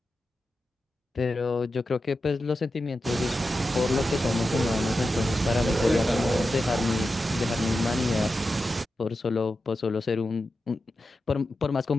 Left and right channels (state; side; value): normal; both; correlation 0.91